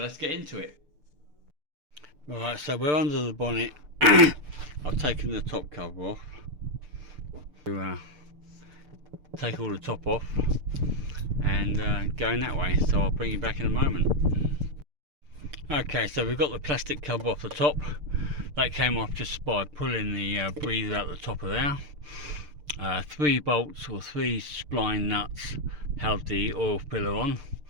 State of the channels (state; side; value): late; left; 6.7 ms